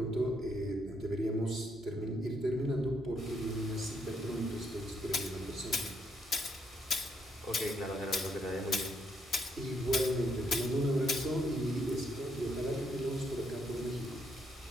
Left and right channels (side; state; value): both; normal; correlation 0.75